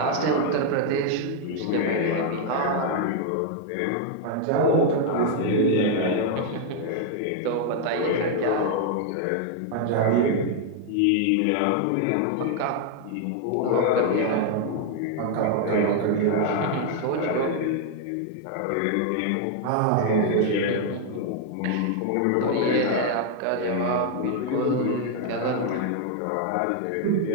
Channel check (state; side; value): different; both; correlation 0.00